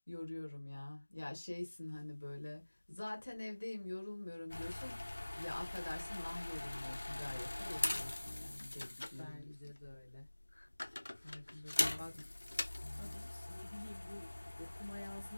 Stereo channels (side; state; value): both; inverted; correlation -1.00